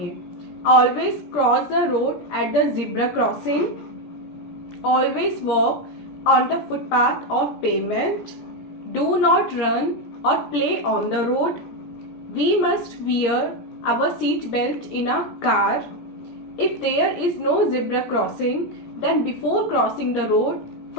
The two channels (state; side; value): late; right; 17 ms